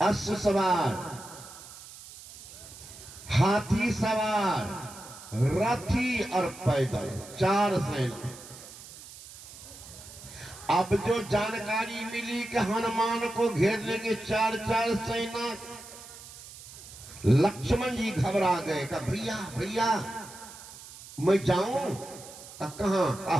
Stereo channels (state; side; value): noise; right; hiss, 16 dB below the sound